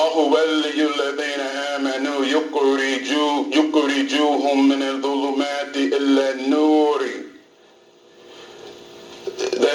waliyul ladhina amanu yukhrijuhum min al-dhulumati illa an-nuri.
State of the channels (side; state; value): both; identical; correlation 1.00